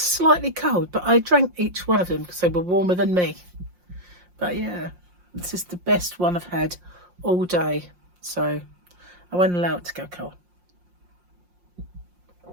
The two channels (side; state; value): left; late; 5.6 ms